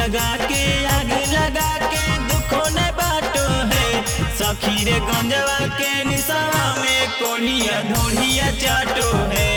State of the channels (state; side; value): identical; both; correlation 1.00